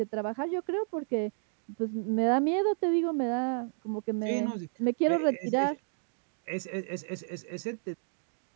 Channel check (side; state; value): left; silent; digital silence